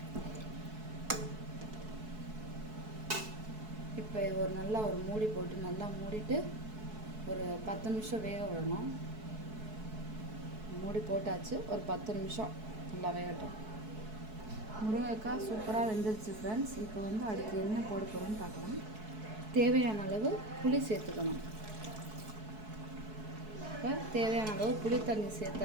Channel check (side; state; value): left; late; 4.6 ms